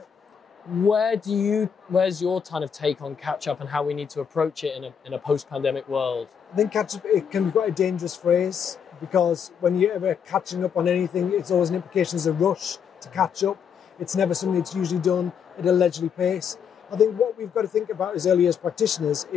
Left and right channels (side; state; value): right; quieter; 7.4 dB